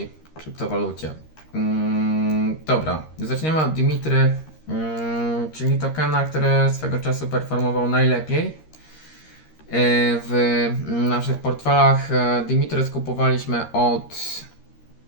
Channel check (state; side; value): late; right; 13 ms